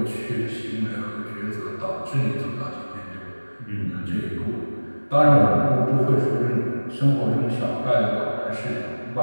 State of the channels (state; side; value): inverted; both; correlation -1.00